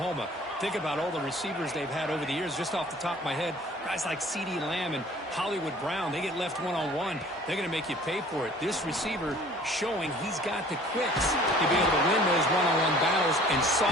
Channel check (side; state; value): both; normal; correlation 0.51